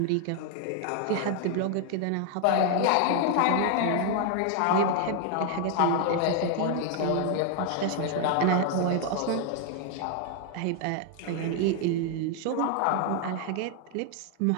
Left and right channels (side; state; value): both; different; correlation 0.00